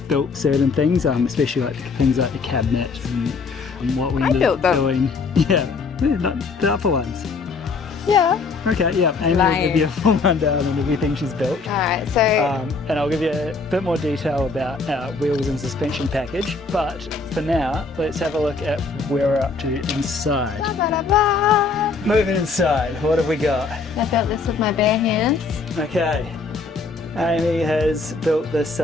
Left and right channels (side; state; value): right; quieter; 4.3 dB